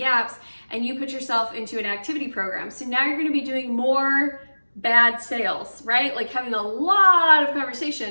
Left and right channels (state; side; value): inverted; both; correlation -1.00